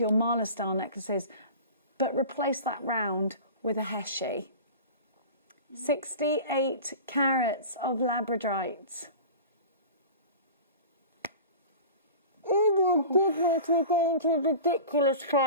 your mala style necklaces, but replace that round with a Heshe. 68 carats of labradorite. Oh my goodness, we're going to a ridiculous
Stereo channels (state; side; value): inverted; both; correlation -0.36